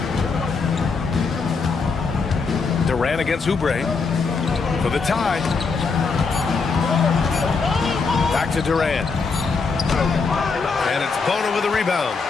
Durant against Oubre for the tie. Back to Durant. And it's Bona with a rebound.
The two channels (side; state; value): right; quieter; 4.7 dB